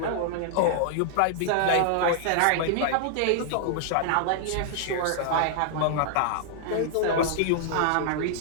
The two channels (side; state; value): both; different; correlation -0.01